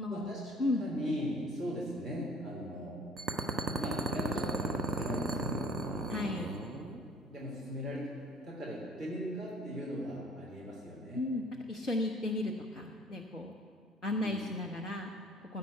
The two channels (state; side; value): normal; both; correlation 0.53